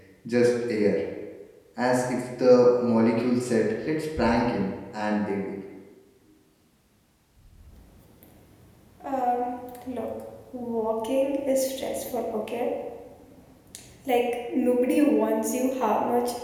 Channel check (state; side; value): identical; both; correlation 1.00